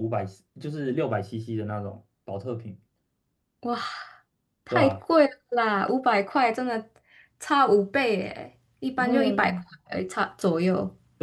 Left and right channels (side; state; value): both; identical; correlation 1.00